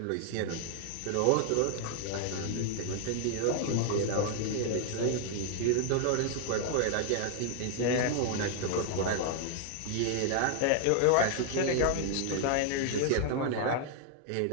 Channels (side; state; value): both; different; correlation 0.00